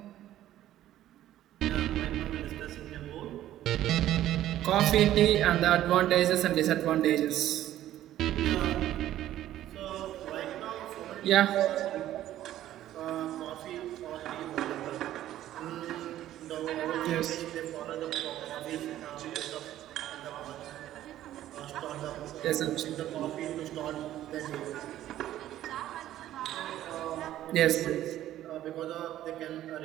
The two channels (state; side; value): quieter; left; 13.1 dB